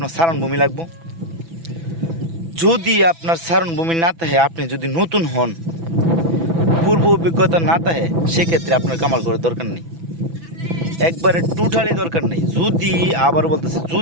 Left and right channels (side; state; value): left; late; 6.0 ms